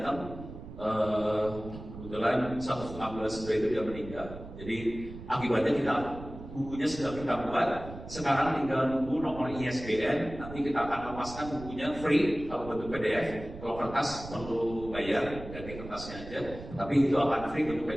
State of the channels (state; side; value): noise; right; rumble, 12 dB below the sound